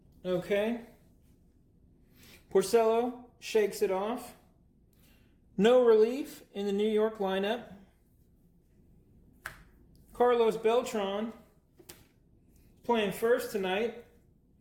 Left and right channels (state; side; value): identical; both; correlation 1.00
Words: Okay. Porcello shakes it off. No relief in the New York lineup. Carlos Beltran playing first tonight.